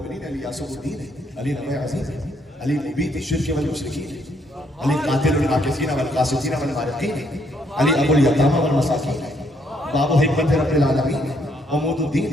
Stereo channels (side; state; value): both; normal; correlation 0.71